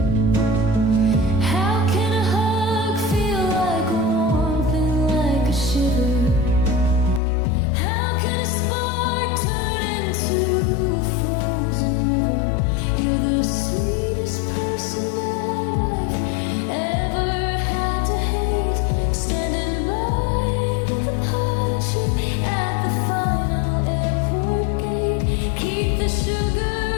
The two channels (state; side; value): drops out; right; at 7.2 s